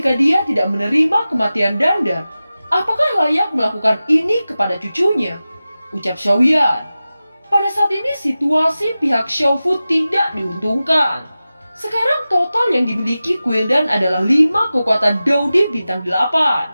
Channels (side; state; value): both; inverted; correlation -0.95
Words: dia tidak menerima kematian Dandan, apakah layak melakukan ini kepada cucunya? Ucap Xiaoyan. Pada saat ini situasi pihak Xiaofu tidak diuntungkan. Sekarang total yang dimiliki Quildan adalah 5 kekuatan Dodi bintang